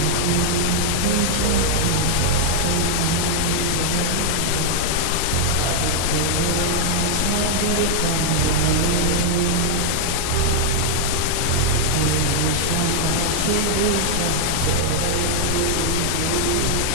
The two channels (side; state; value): both; different; correlation 0.00